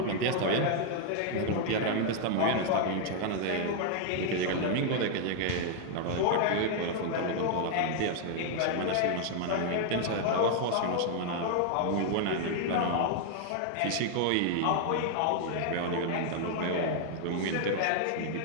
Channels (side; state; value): both; different; correlation 0.00